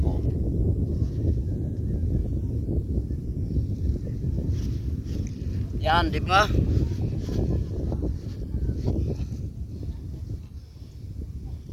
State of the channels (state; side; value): identical; both; correlation 1.00